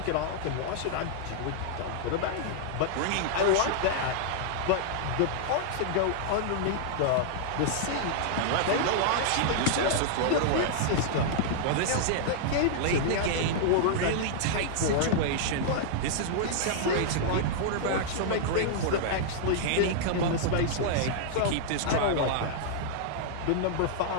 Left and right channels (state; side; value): different; both; correlation -0.01